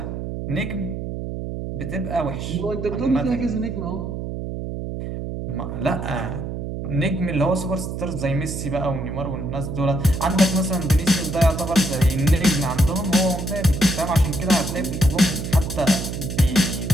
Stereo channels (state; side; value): noise; right; hum, 5 dB below the sound